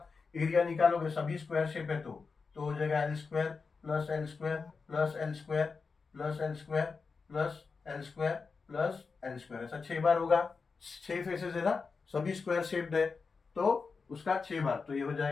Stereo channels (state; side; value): quieter; right; 4.8 dB